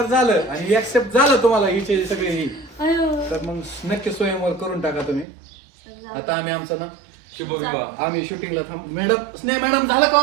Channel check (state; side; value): drops out; left; at 5.2 s